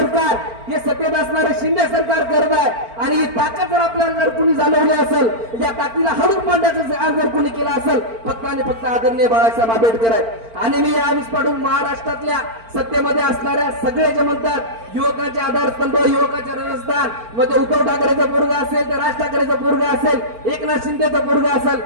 हे सत्तेत असणारे शिंदे सरकार करत आहे आणि ही ताकद जर आपल्याला जर कुणी जाणवली असेल या ताकदीला हडून पाडण्याचं जर कुणी केलं असेल फक्त आणि फक्त आदरणीय बाळासाहेब आंबेडकर आहेत। आणि मी यावेळेस पाडून महाराष्ट्रातल्या सत्तेमध्ये असणाऱ्या सगळे जे म्हणतात युवकाचे आधारस्तंभ युवकाचे राजस्थान मध्ये उद्धव ठाकरेचं पोरगा असेल ते राज ठाकरेचं पोरगा असेल एकनाथ शिंदेचं पोरगा असेल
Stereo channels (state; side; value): late; left; 4.4 ms